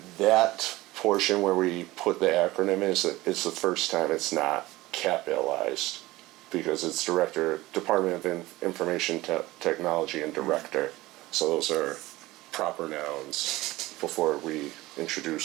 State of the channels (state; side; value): quieter; left; 18.8 dB